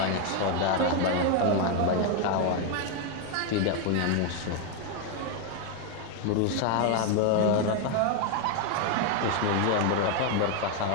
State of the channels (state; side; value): different; both; correlation 0.01